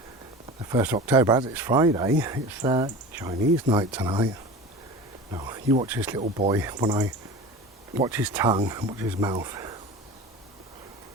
1st of October, as it's Friday, it's Chinese night tonight. No, you watch this little boy when I watch his tongue and watch his mouth.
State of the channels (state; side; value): normal; both; correlation 0.34